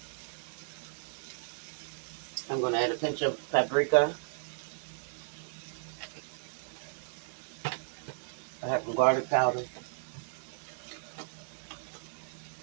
I'm going to add a pinch of paprika. I have some garlic powder.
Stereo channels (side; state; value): left; silent; digital silence